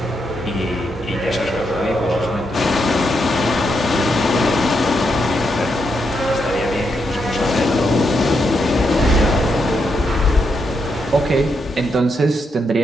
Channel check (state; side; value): normal; both; correlation 0.81